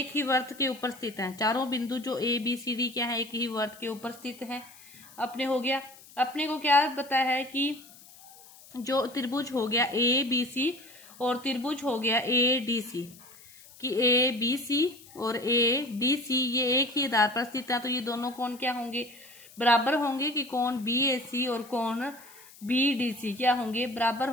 ही वृत्त के ऊपर स्थित है। चारों बिंदु जो ए बी सी डी क्या है, एक ही वृत्त के ऊपर स्थित है। अपने हो गया, अपने को क्या पता है कि जो त्रिभुज हो गया ए बी सी और त्रिभुज हो गया ए डी सी, कि ए बी सी और ए डी सी ये एक ही आधार पर स्थित है। तो ये दोनों कोण क्या होंगे, बराबर होंगे। कि कोण बी ए सी और कोण बी डी सी क्या होंगे, बराबर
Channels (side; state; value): left; noise; hiss, 22 dB below the sound